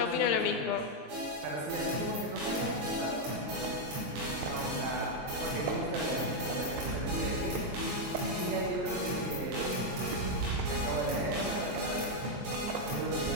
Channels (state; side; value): late; left; 22 ms